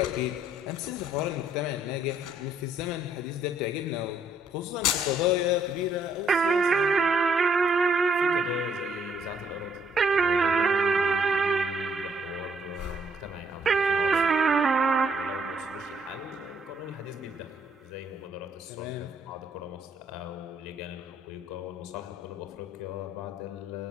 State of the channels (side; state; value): both; normal; correlation 0.67